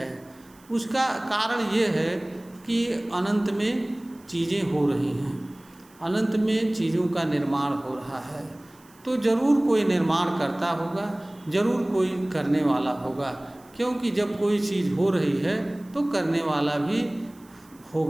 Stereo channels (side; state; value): right; noise; hiss, 28 dB below the sound